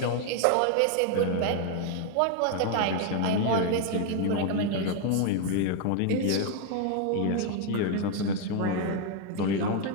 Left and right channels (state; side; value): different; both; correlation 0.01